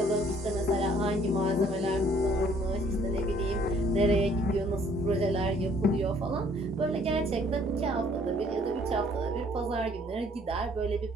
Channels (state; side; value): normal; both; correlation 0.60